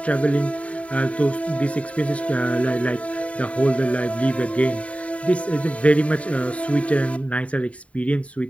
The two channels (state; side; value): late; right; 0.065 ms